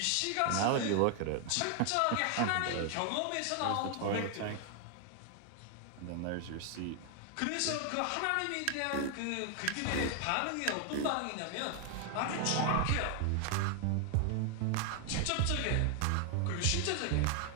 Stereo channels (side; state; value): both; different; correlation 0.00